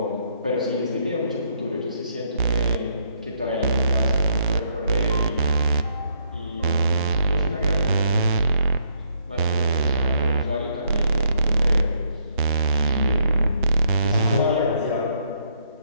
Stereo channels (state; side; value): inverted; both; correlation -0.71